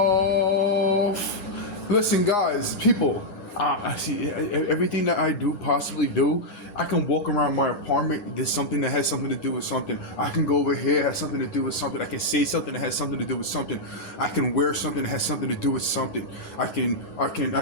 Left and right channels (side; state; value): right; late; 11 ms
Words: Listen, guys, people. I see everything that I do possibly do. I can walk around my apartment. There's something that has something to do with something. I can go over here, has something to do with something. I can say something that has something to do with something. I can wear something that has something to do with something. I can.